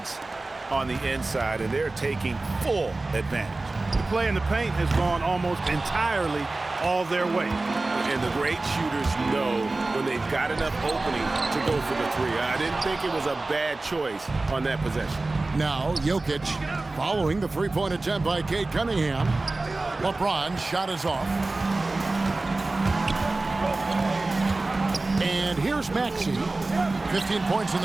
on the inside, and they're taking full advantage. The play in the paint has gone almost entirely all their way. And the great shooters know when they've got enough opening to go for the 3. I didn't think it was a bad choice on that possession. Now, Jokic following the three-point attempt by Cade Cunningham. LeBron's shot is off. And here's Maxey. 15 points in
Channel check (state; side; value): quieter; left; 3.2 dB